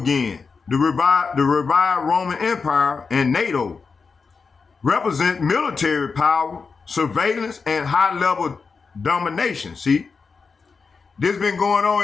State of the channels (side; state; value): right; quieter; 5.0 dB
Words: The revived Roman Empire and NATO represent military power, surveillance, and high-level domination. See, this been going